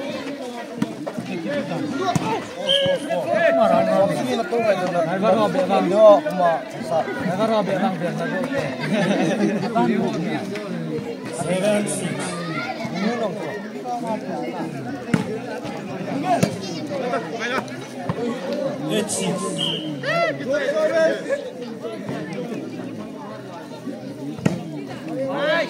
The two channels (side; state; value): both; identical; correlation 1.00